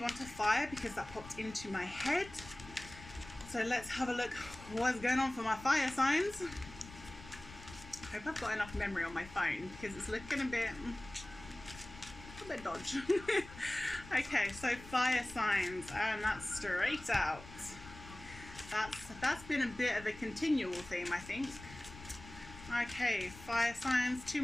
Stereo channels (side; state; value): left; noise; rumble, 16 dB below the sound